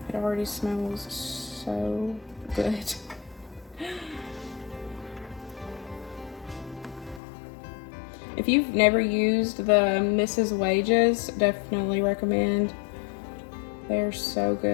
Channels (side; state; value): right; drops out; at 7.2 s